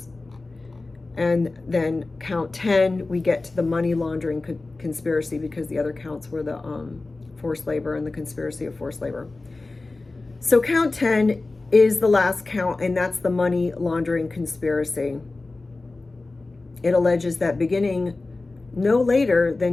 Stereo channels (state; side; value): quieter; right; 3.3 dB